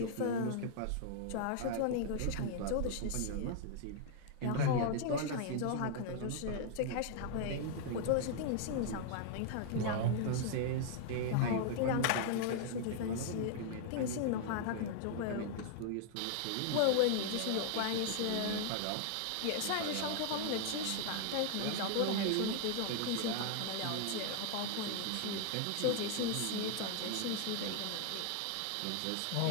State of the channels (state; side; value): different; both; correlation 0.00